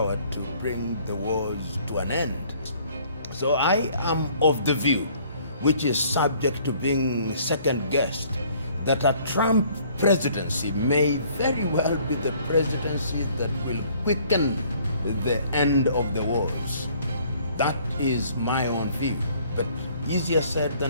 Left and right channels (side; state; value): both; inverted; correlation -0.59